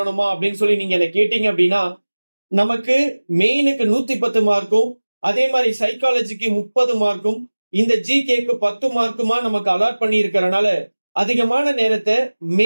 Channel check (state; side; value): inverted; both; correlation -1.00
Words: அப்படின்னு சொல்லி நீங்க என்ன கேட்டீங்க அப்படின்னா, நமக்கு மெயினுக்கு 110 மார்க்கும், அதே மாதிரி சைக்காலஜிக்கு 30 மார்க்கும், இந்த ஜிகேக்கு 10 மார்க்குமா நமக்கு அலாட் பண்ணி இருக்கிறனால அதிகமான நேரத்தை